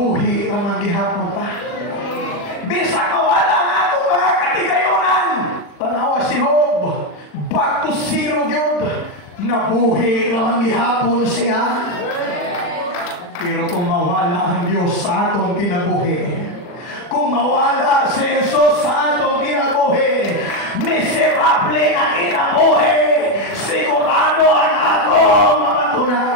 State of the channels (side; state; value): right; late; 40 ms